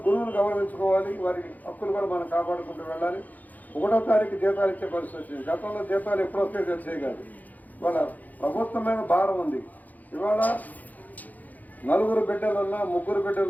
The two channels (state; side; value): late; right; 0.081 ms